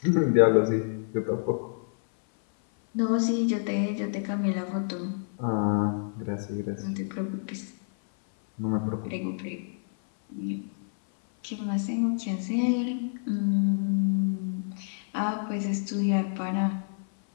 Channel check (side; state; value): right; silent; 57 dB below the other